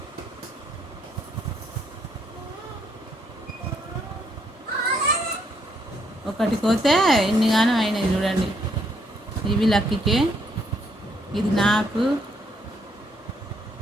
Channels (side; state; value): both; normal; correlation 0.71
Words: ఒకటి పోతే ఎన్నిగానో అయినాయి చూడండి. ఇవి లక్కీకే, ఇది నాకు,